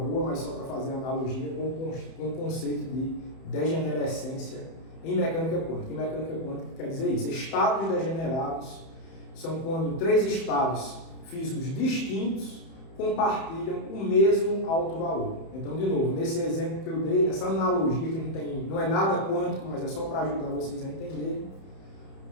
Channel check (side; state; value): right; late; 31 ms